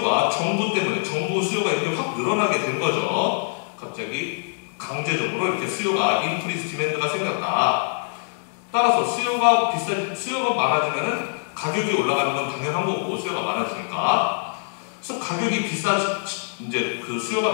정부 때문에, 정부 수요가 이렇게 확 늘어나게 된 거죠. 갑자기 강제적으로 이렇게 수요가, 인크리스 디맨드가 생겼다. 따라서 수요가 많아지면은 가격이 올라가는 건 당연한 거고, 수요가 많아지니까. 그래서 이제 그 수요가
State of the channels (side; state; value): right; silent; 63 dB below the other